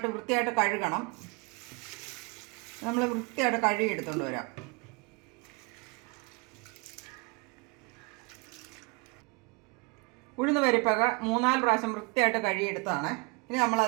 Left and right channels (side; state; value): left; quieter; 29.8 dB